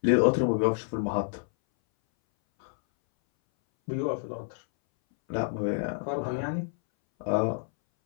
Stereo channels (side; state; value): right; silent; 59 dB below the other